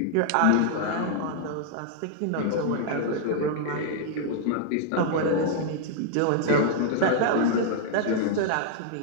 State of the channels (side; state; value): both; different; correlation 0.00